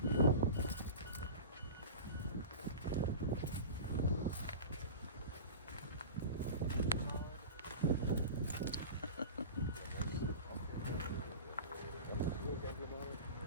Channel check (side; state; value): both; inverted; correlation -0.32